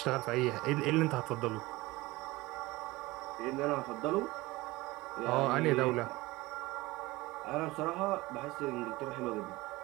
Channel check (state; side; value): quieter; left; 20.3 dB